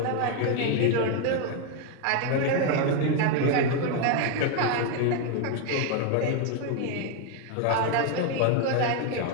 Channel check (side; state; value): both; different; correlation 0.01